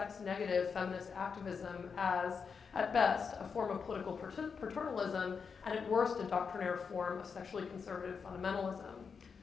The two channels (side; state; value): right; quieter; 5.8 dB